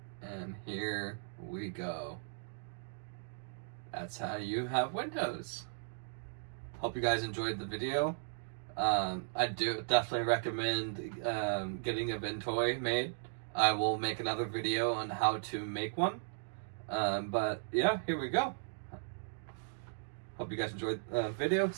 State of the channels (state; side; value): silent; left; digital silence